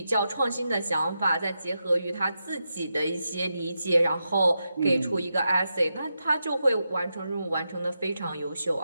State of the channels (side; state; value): both; inverted; correlation -0.87